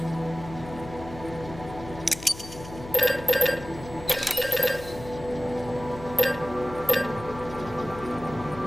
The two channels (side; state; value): left; noise; hum, 14 dB below the sound